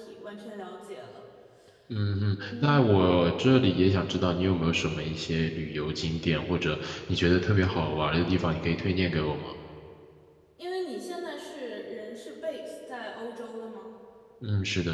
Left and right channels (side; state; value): both; identical; correlation 1.00